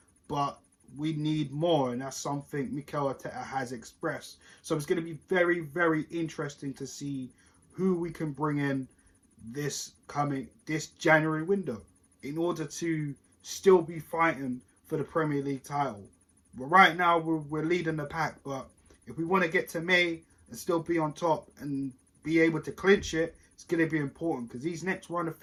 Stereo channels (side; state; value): both; identical; correlation 1.00